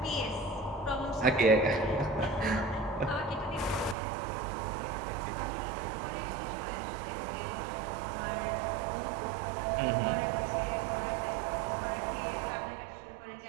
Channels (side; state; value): left; drops out; at 4.0 s